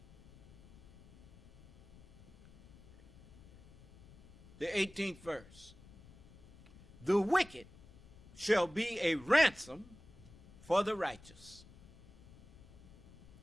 the 18th verse, the wicked shall be a ransom for the righteous,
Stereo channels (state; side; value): noise; left; rumble, 22 dB below the sound